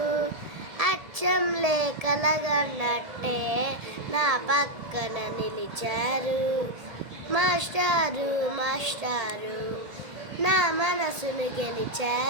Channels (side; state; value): left; late; 1.7 ms